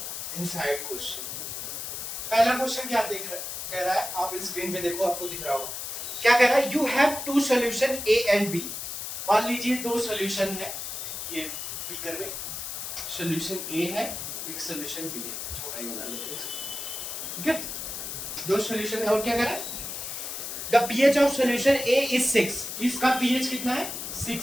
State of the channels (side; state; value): left; noise; hiss, 6 dB below the sound